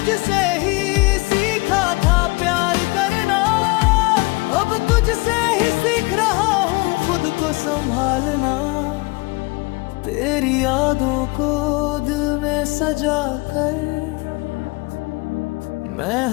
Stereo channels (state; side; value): quieter; right; 26.0 dB